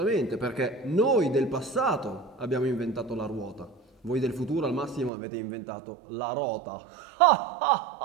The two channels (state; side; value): drops out; left; at 5.1 s